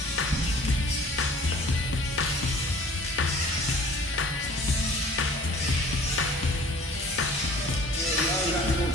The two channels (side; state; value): both; normal; correlation 0.49